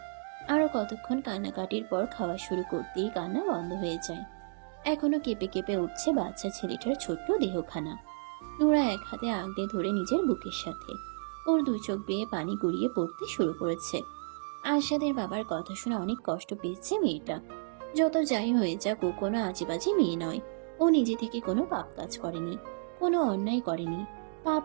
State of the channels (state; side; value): silent; left; digital silence